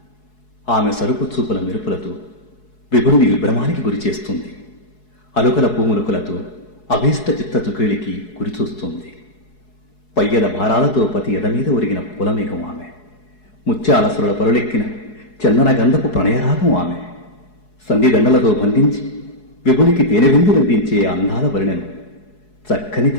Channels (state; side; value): late; right; 4.7 ms